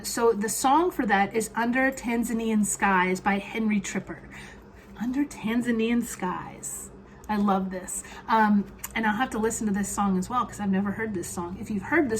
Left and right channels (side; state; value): both; identical; correlation 1.00